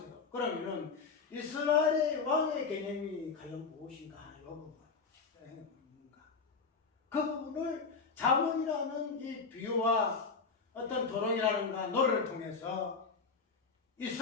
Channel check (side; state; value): right; quieter; 4.9 dB